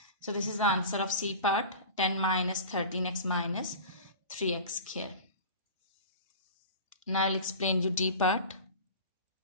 So this is the answer of C part. 10 minus 13x minus 3x here. Now I will explain you D part.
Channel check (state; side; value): inverted; both; correlation -0.35